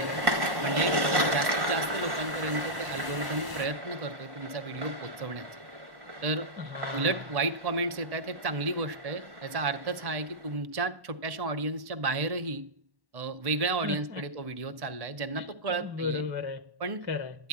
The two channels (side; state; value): left; late; 1.1 ms